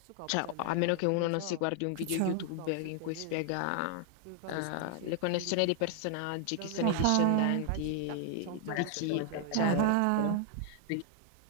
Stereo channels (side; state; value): both; different; correlation 0.00